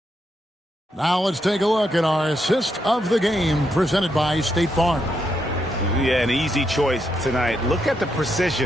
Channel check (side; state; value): both; normal; correlation 0.80